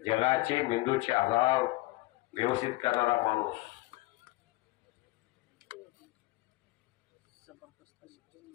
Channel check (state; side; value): quieter; right; 20.4 dB